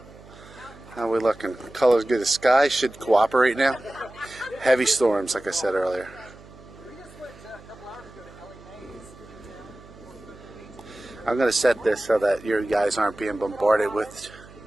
How are we looking? Color's good. The sky should cooperate now. Heavy storms, like I said earlier. We just went a couple hours ago to Ellie Mae's. I'm going to set this so that your guys aren't being bombarded with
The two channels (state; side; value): noise; right; hum, 21 dB below the sound